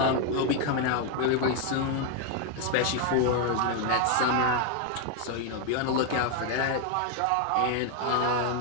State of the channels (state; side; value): different; both; correlation 0.01